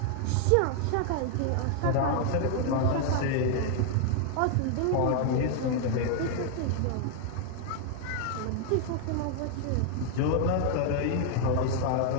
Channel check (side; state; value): both; different; correlation 0.00